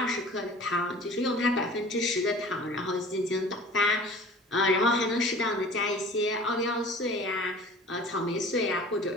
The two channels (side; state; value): both; normal; correlation 0.44